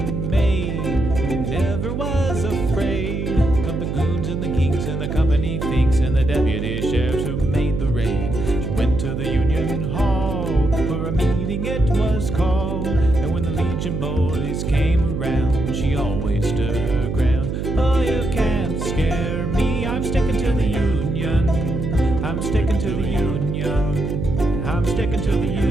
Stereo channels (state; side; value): noise; right; hum, 3 dB below the sound